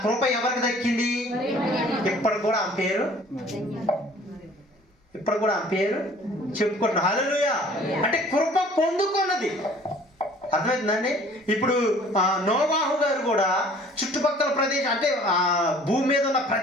కృప ఎవరికి దక్కింది? ఇప్పుడు కూడా ఆమె పేరు చెప్పుకుంటున్నా. హల్లెలూయా. అంటే కృప పొందుకున్నది. అర్థమవుతుందండి? ఇప్పుడు నోవాహు గారు కూడా చుట్టుపక్కల ప్రదేశం అంటే భూమి మీద ఉన్న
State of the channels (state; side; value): normal; both; correlation 0.52